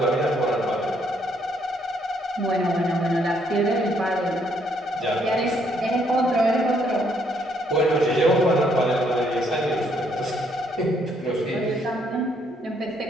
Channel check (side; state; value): both; normal; correlation 0.70